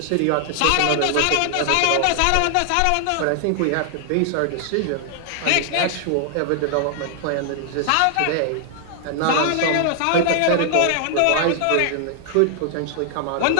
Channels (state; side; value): different; both; correlation 0.00